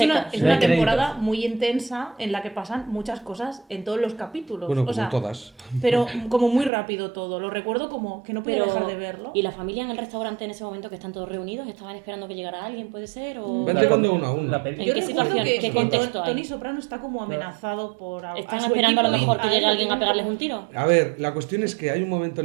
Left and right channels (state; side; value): drops out; left; at 6.7 s